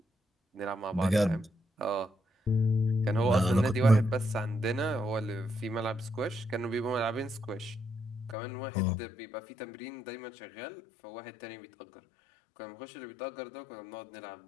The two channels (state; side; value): drops out; right; at 8.3 s